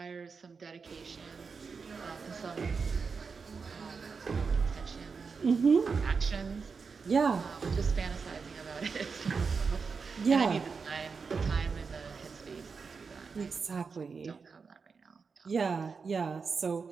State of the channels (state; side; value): quieter; left; 5.2 dB